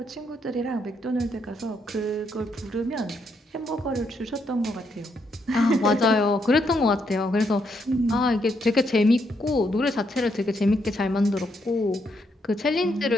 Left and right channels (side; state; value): both; normal; correlation 0.76